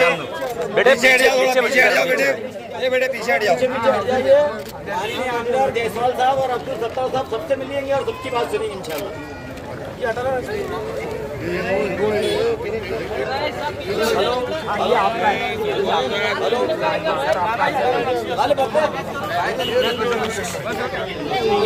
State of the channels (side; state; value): both; identical; correlation 1.00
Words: बेटे पीछे हट जाओ बेटे पीछे हट जाओ अंदर जयसवाल साहब और अब्दुल सत्तार साहब सबसे मिलेंगे और सबकी बात सुनेंगे इंशाल्लाह। ये हटा ये आपका है